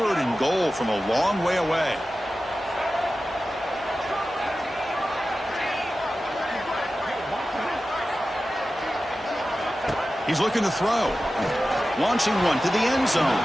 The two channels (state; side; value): normal; both; correlation 0.94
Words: and goal from a long way away. He's looking to throw. Launching one to the end zone.